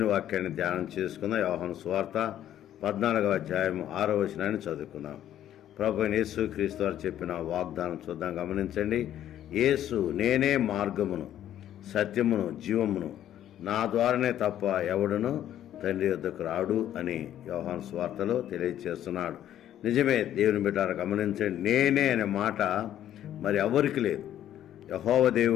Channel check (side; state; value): right; quieter; 11.5 dB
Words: వాక్యాన్ని ధ్యానం చేసుకుందాం. యోహాను సువార్త 14వ అధ్యాయం 6వ వచనాన్ని చదువుకుందాం. ప్రభు యేసు క్రీస్తు వారు చెప్పిన వాగ్దానం చూద్దాం, గమనించండి. యేసు, నేనే మార్గమును, సత్యమును, జీవమును, నా ద్వారానే తప్ప ఎవడును తండ్రి యొద్దకు రాడు అని యోహాను సువార్తలో తెలియజేస్తున్నాడు. నిజమే దేవుని బిడ్డలారా, గమనించండి. నేనే అనే మాట మరి ఎవరికి లేదు. యెహోవా